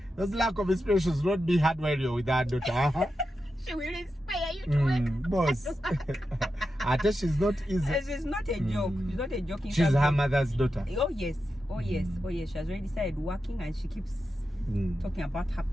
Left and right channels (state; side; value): normal; both; correlation 0.89